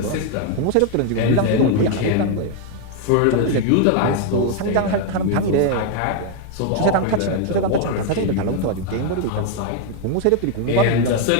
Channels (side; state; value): both; different; correlation 0.01